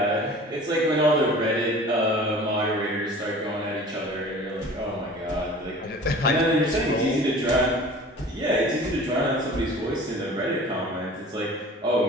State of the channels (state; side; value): normal; both; correlation 0.43